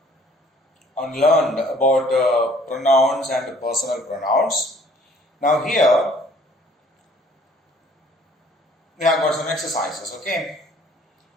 learned about pronouns and personal pronouns. Now here we have got some exercises, okay?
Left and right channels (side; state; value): both; normal; correlation 0.57